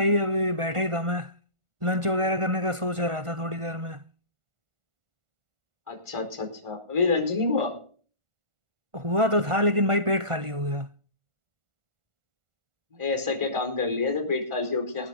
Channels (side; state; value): left; late; 1.5 ms